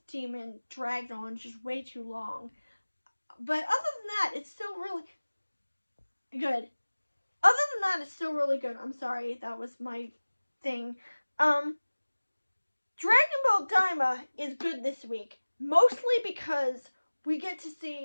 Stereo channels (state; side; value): inverted; both; correlation -1.00